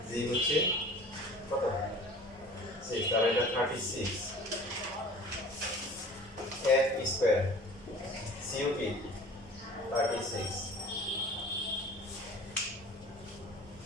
g হচ্ছে কত 6 তাহলে এটা 36 f স্কয়ার cup 36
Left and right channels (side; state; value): both; normal; correlation 0.43